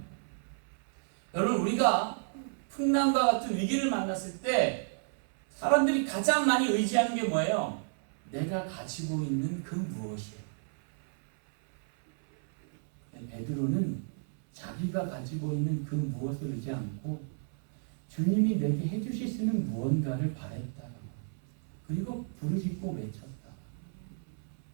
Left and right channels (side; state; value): left; silent; 57 dB below the other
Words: 여러분 우리가 풍랑과 같은 위기를 만났을 때 사람들이 가장 많이 의지하는 게 뭐예요? 내가 가지고 있는 그 무엇이에요. 베드로는 자기가 가지고 있는 그 무엇을 의지 않고 주님이 내게 해주실 수 있는 무언가를 바랬다. 그리고 부르짖고 외쳤다.